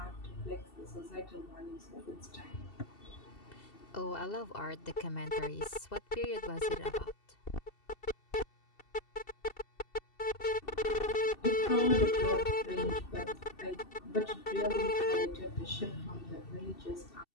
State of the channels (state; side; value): late; right; 2.7 ms